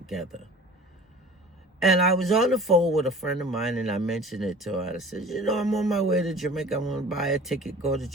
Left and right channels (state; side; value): normal; both; correlation 0.43